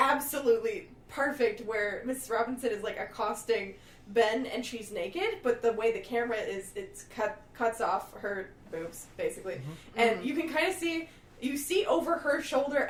perfect where Mrs. Robinson is like accosting Ben and she's naked, but the way the camera is, cuts off her boobs basically, and you can kind of see over her shoulder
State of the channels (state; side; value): identical; both; correlation 1.00